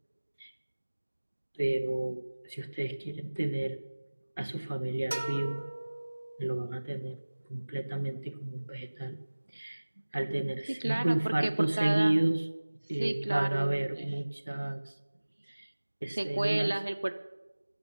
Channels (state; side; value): inverted; both; correlation -1.00